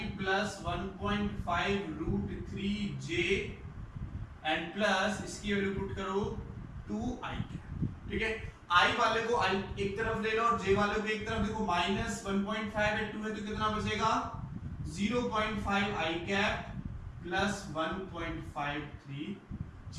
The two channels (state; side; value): identical; both; correlation 1.00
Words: plus 1.5 root 3j and plus इसकी वैल्यू पुट करो 2i। ठीक है, i वाले को i एक तरफ ले लो और j वाले को एक तरफ, देखो -1.5 है 2 है तो कितना बचेगा 0.5i cap plus 1.53 j